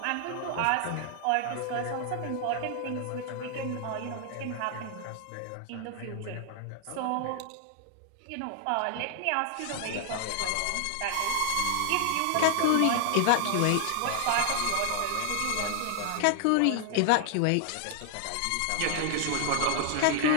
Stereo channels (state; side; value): different; both; correlation 0.00